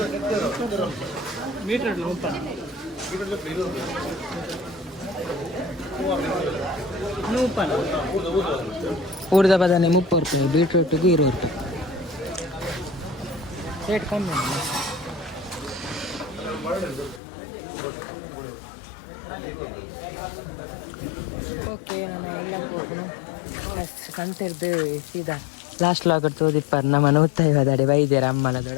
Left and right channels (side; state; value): right; drops out; at 17.2 s